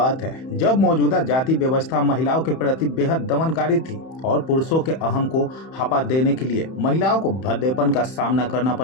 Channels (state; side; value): late; right; 31 ms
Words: है, जब मौजूदा जाति व्यवस्था महिलाओं के प्रति बेहद दमनकारी थी और पुरुषों के अहम को हपा देने के लिए महिलाओं को भद्देपन का सामना करना